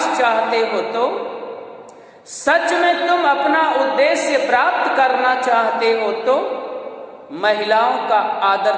चाहते हो तो, सच में तुम अपना उद्देश्य प्राप्त करना चाहते हो तो महिलाओं का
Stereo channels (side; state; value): both; identical; correlation 1.00